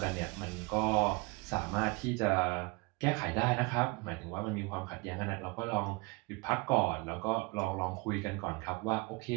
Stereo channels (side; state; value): left; quieter; 26.5 dB